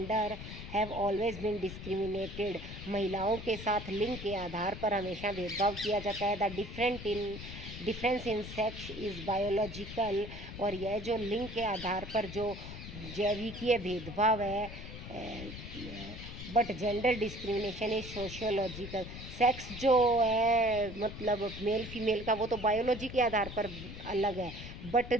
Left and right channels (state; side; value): noise; left; rumble, 10 dB below the sound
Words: have always been discriminated, महिलाओं के साथ लिंग के आधार पर हमेशा भेदभाव किया जाता है। The difference in sex is biological, और यह जो लिंग के आधार पर जो जैविकीय भेदभाव है, but gender discrimination is sociological, sex जो है मेल फीमेल का वो तो बायोलॉजी के आधार पर अलग है, बट